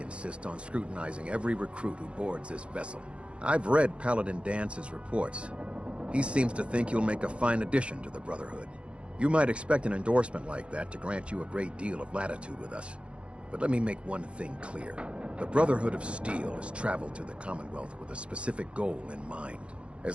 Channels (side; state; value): left; late; 0.059 ms